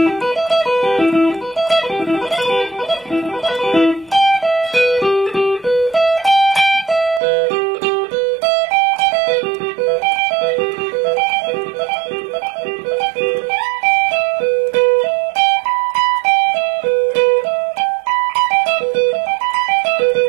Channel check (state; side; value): drops out; left; at 7.2 s